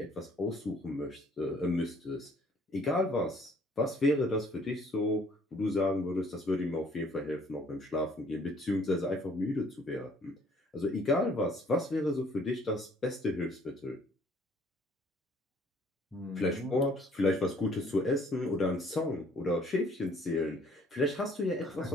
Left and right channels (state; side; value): normal; both; correlation 0.59